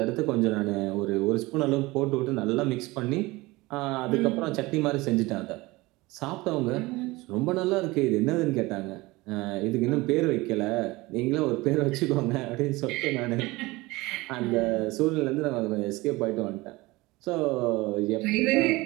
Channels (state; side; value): quieter; left; 21.4 dB